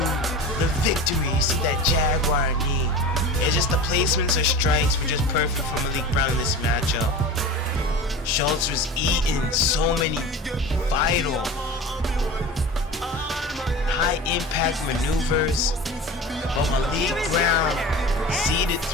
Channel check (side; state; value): both; normal; correlation 0.33